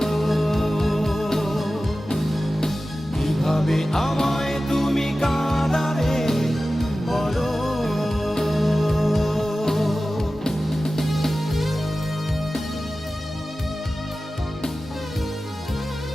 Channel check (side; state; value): both; normal; correlation 0.95